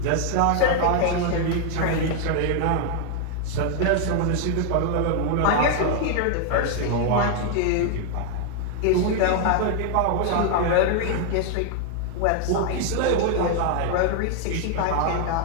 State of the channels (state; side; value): different; both; correlation 0.00